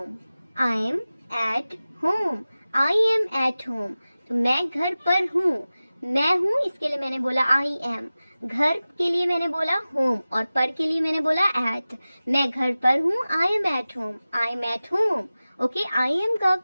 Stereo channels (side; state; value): both; inverted; correlation -0.97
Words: I am at home. I am at home. तो मैं घर पर हूँ। मैं हूँ इसके लिए मैंने बोला आई एम। घर के लिए मैंने बोला होम और पर के लिए मैंने बोला एट। मैं घर पर हूँ, I am at home. I am at home. Okay, I am का